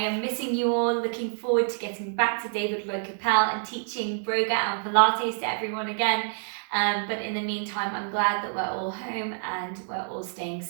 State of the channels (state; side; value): silent; left; 60 dB below the other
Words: missing you all, looking forward to getting back to David Lloyd Capel and teaching Broga and Pilates to everyone again. But in the meantime, I'm glad that we're all home and we're all staying